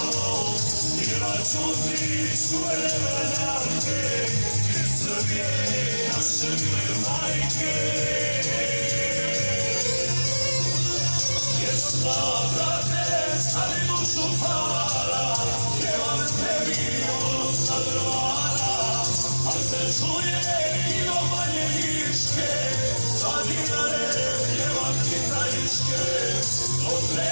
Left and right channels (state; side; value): inverted; both; correlation -1.00